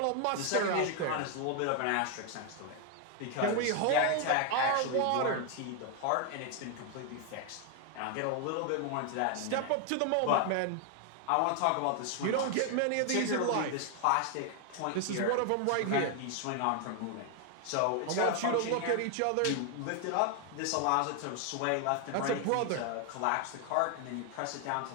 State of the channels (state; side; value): different; both; correlation 0.01